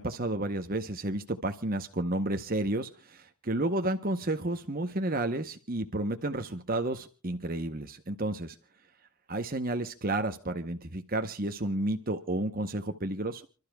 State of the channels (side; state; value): both; normal; correlation 0.41